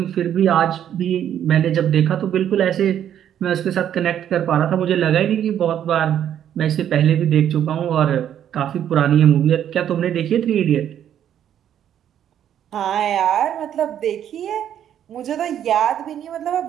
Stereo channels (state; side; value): quieter; left; 10.1 dB